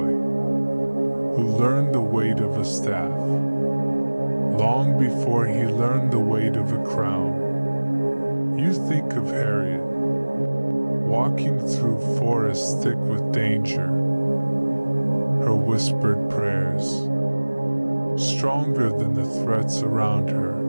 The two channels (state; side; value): inverted; both; correlation -1.00